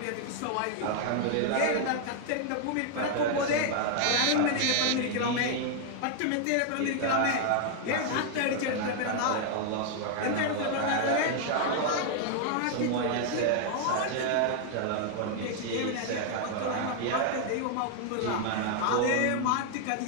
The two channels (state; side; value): different; both; correlation 0.00